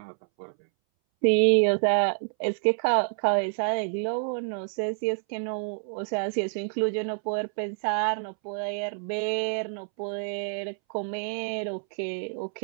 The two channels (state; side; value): silent; left; 60 dB below the other